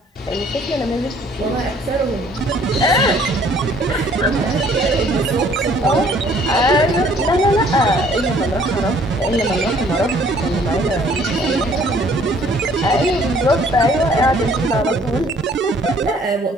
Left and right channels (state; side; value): normal; both; correlation 0.59